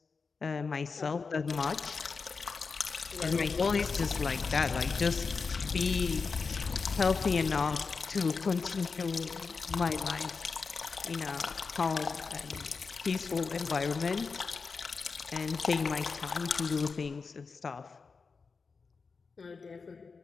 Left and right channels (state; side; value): quieter; right; 4.8 dB